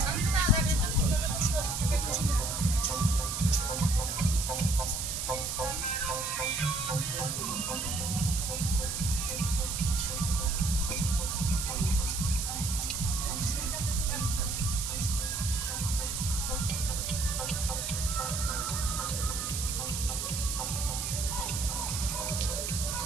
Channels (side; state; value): right; noise; hiss, 3 dB below the sound